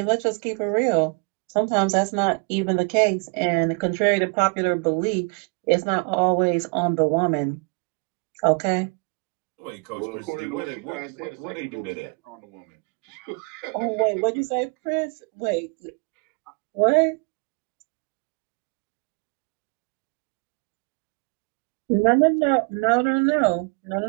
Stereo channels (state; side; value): quieter; left; 33.7 dB